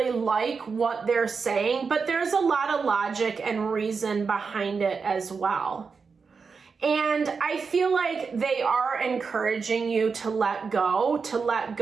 like what they're saying, but there's a lot of logic and reason behind it as well. And I feel like they are encouraging you to let go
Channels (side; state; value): left; quieter; 5.2 dB